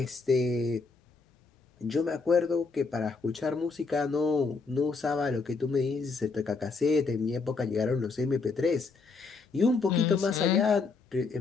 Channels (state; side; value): quieter; right; 4.4 dB